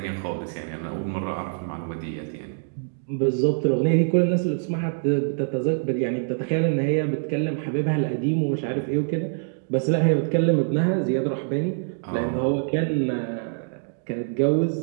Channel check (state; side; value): silent; left; digital silence